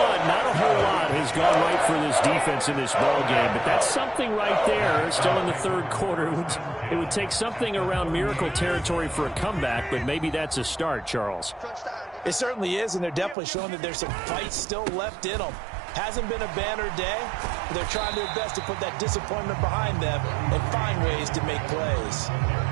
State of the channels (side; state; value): left; drops out; at 13.4 s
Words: not a whole lot has gone right for this defense in this ball game, but that's something right there. Still in the 3rd quarter. It would take something around miracle territory for a comeback, but maybe that's a start, Charles. It certainly is, and they're definitely showing that there's some fight still left in them. Hasn't been a banner day, but they're trying their best to put that disappointment behind them and find ways to make plays.